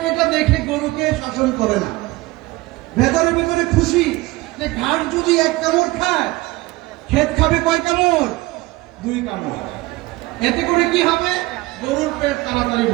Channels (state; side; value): quieter; left; 20.4 dB